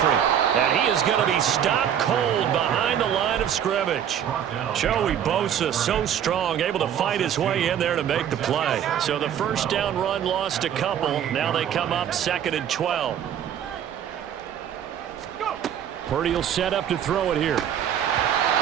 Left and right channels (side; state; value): left; quieter; 9.4 dB